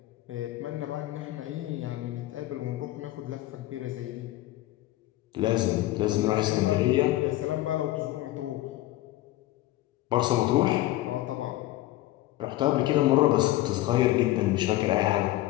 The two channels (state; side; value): quieter; right; 16.2 dB